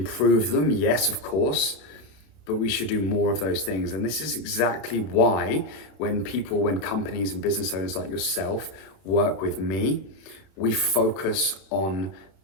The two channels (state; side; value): late; right; 31 ms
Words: them, yes, of course, but we should do more of those things. And this is exactly why when companies and business owners like yourself work with me, we focus on